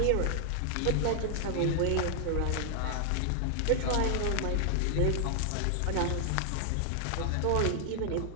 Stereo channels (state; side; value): different; both; correlation 0.00